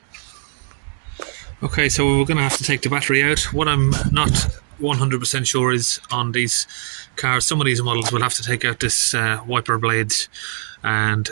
Okay, so we're going to have to take the battery out. What I'm not 100% sure is on these cars, some of these models will have to take out this wiper blades and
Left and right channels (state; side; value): silent; left; digital silence